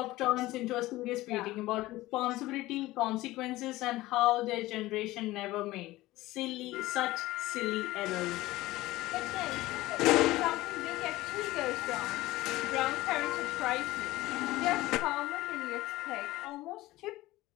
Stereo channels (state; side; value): quieter; right; 17.8 dB